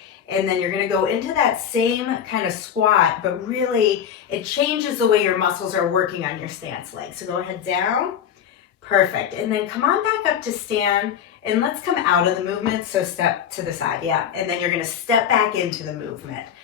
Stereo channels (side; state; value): right; quieter; 8.7 dB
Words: And then you're going to go into that same kind of squat, but really it changes the way your muscles are working on your stance leg. So go ahead down. Perfect. And then come on back up to stand, and let's come out of the movement. So step to the side. Yeah. And then you're going to step back into the movement.